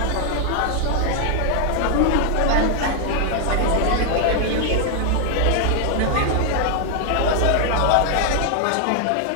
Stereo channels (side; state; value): both; different; correlation 0.00